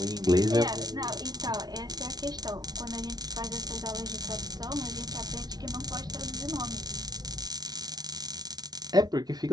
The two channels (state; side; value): late; left; 0.19 ms